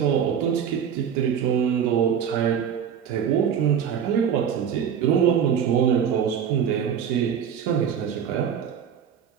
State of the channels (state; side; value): quieter; left; 8.2 dB